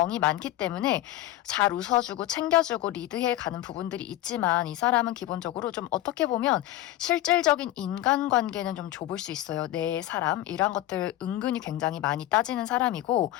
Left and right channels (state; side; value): quieter; right; 14.5 dB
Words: 많기 때문에 잘 웃어주고 챙겨주고 리드해 가는 부분들이 있지만 이 사람은 기본적으로 좀 어떻게 보면 실질적인 인간관계는 좀 좁을 수 있어요. 내 사람 이런 것들 은근히 굉장히 많이 따지는 사람이고